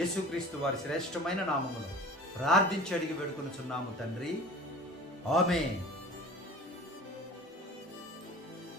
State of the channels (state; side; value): normal; both; correlation 0.40